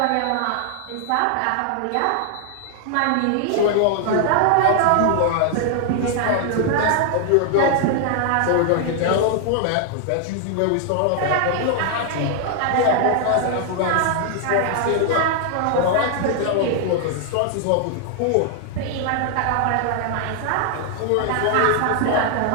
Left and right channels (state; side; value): different; both; correlation 0.00